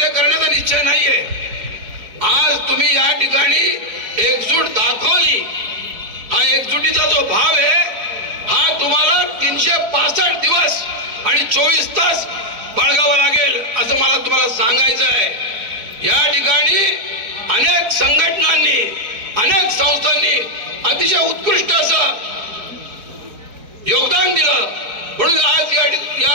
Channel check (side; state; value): left; late; 4.8 ms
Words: करण्याचा निश्चय नाहीये, आज तुम्ही या ठिकाणी एकजूट दाखवली। हा एकजुटीचा जो भाव आहे हा तुम्हाला 365 दिवस आणि 24 तास बाळगावा लागेल असं मला तुम्हाला सांगायचं आहे। या ठिकाणी अनेक संघटनांनी, अनेक संस्थांनी अतिशय उत्कृष्ट असं योगदान दिलं, म्हणून आज